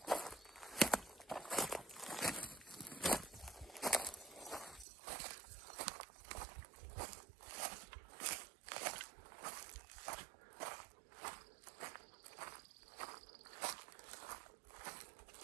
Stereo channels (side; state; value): left; drops out; at 4.9 s